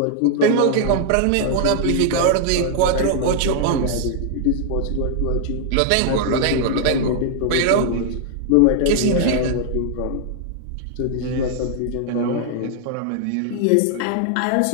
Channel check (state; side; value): different; both; correlation 0.00